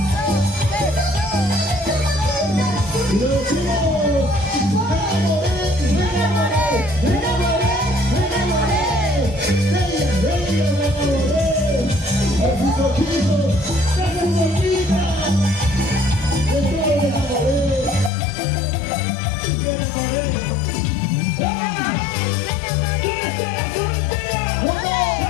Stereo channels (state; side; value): drops out; right; at 18.1 s